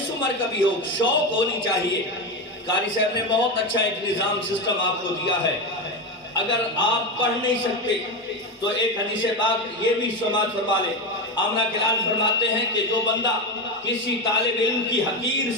عمر کا بھی ہو، شوق ہونی چاہیے. قاری صاحب نے بہت اچھا ایک نظام سسٹم آپ کو دیا ہے. اگر آپ پڑھ نہیں سکتے تو ایک حدیث پاک یہ بھی سماعت فرما لیں. آمنہ کے لال فرماتے ہیں کہ جو بندہ کسی طالب علم کی حقیر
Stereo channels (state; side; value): normal; both; correlation 0.16